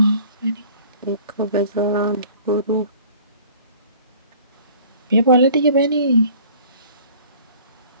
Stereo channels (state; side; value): inverted; both; correlation -0.50